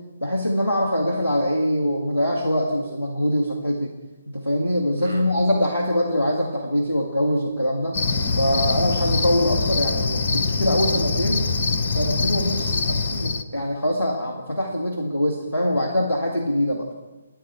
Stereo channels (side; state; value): both; inverted; correlation -0.84